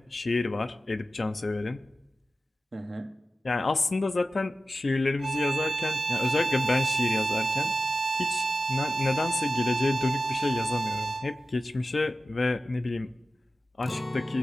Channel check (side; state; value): both; normal; correlation 0.93